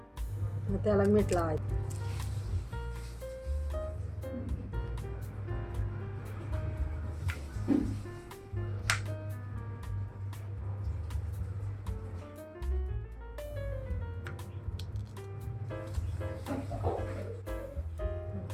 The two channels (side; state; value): both; identical; correlation 1.00